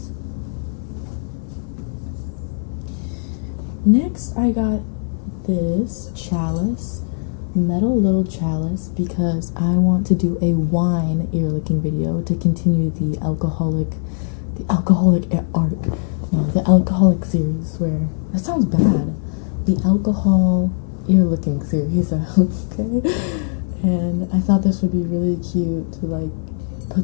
Next, I got this chalice, metal little chalice, because I want to do a wine ear licking video to continue the alcoholic arc. No, the alcoholic series where that sounds bad. The alcohol ear licking series, okay. And I thought this would be really cute to like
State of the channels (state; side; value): silent; right; 61 dB below the other